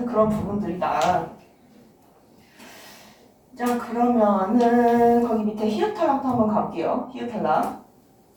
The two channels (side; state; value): both; identical; correlation 1.00